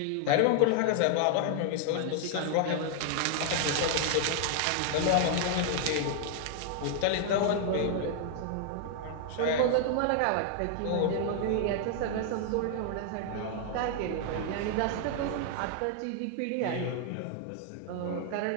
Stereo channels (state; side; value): different; both; correlation 0.00